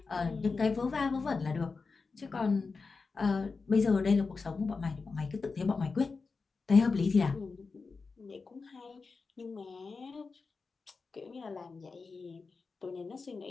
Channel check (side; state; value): right; quieter; 4.4 dB